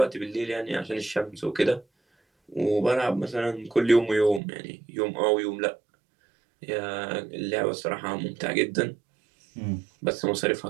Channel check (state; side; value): drops out; left; at 4.4 s